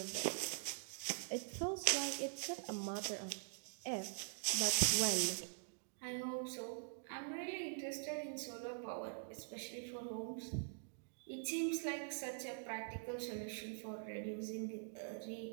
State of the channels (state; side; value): silent; left; digital silence